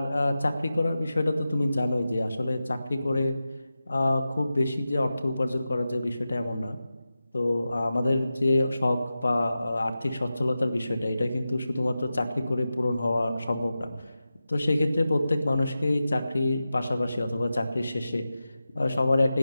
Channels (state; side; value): inverted; both; correlation -0.93